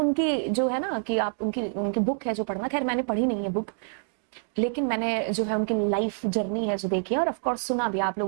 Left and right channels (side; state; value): left; silent; 60 dB below the other